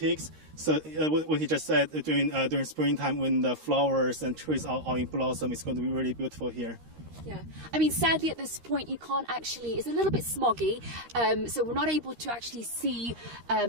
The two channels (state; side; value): late; left; 13 ms